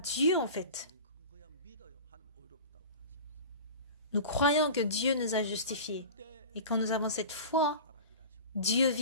en fait. Nous croyons que Dieu nous a justifiés. Et quand nous avons cette foi, Dieu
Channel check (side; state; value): both; inverted; correlation -0.35